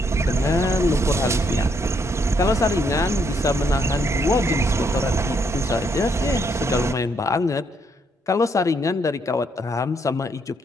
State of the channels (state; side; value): normal; both; correlation 0.73